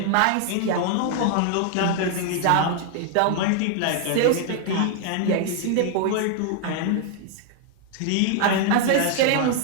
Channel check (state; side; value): different; both; correlation 0.00